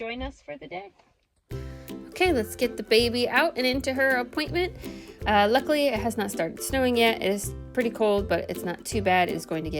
us for the day. Okay, let's get the baby out and into her appointment. Luckily, it has not started snowing yet. It is pretty cold, but it's not too bad. It is going to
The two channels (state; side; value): identical; both; correlation 1.00